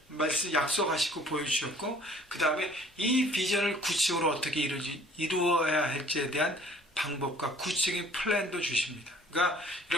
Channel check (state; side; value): normal; both; correlation 0.54